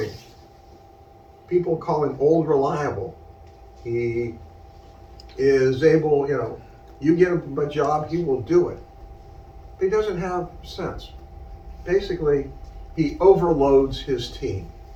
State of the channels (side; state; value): both; identical; correlation 1.00